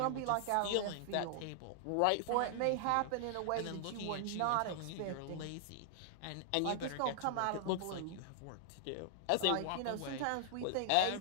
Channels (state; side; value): different; both; correlation -0.01